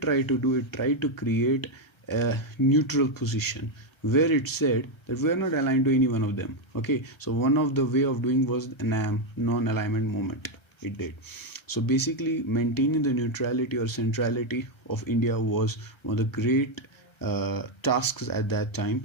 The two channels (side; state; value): right; late; 1.3 ms